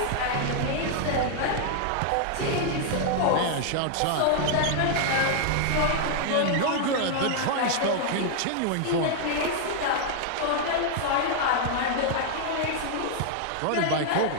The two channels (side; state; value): both; different; correlation 0.00